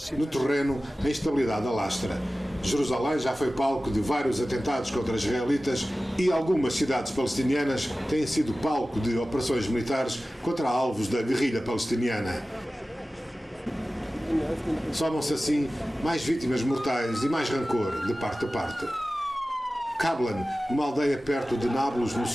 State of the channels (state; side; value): normal; both; correlation 0.96